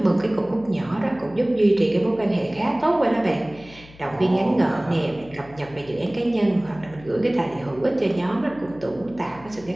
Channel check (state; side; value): noise; left; hum, 22 dB below the sound